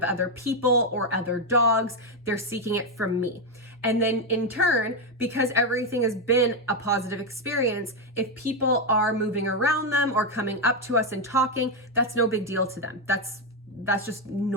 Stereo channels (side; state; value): both; normal; correlation 0.05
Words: other people or other dogs. They're seeking it from me. And then in turn, because everything has been a positive experience, if people are moving around them or coming up to us and talking, that's no big deal to them. That's just